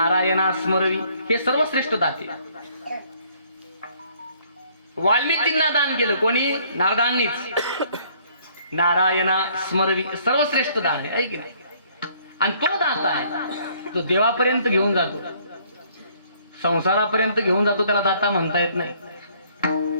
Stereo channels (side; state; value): both; inverted; correlation -0.62